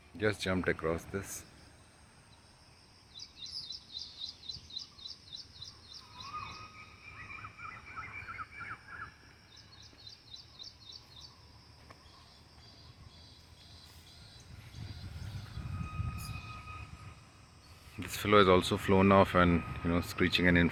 Just jumped across this. This fellow has also flown off and screeching and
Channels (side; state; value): both; identical; correlation 1.00